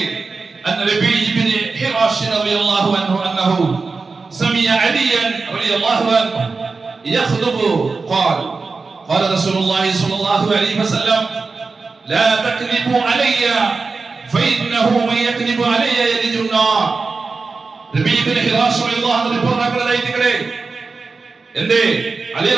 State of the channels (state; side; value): quieter; left; 4.2 dB